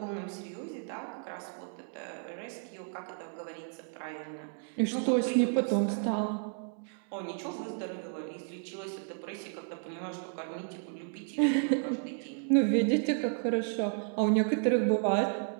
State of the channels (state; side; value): silent; left; 56 dB below the other